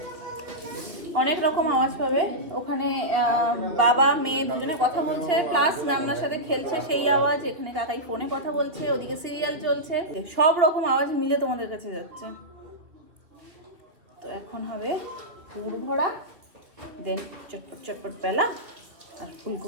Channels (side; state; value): left; late; 2.5 ms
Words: অনেক রকম আওয়াজ পাবে ওখানে, বাবা মেয়ে দুজনে কথা বলছে, প্লাস নামনার সাথে খেলছে সেই আওয়াজ, এখানে কাকাই ফোনে কথা বলছে, ওদিকে সিরিয়াল চলছে, সব রকম আওয়াজ মিলে তোমাদের কাছে যাচ্ছে। তো এখন হবে পুর ভরা, দেন চটপট চটপট পেলা, আর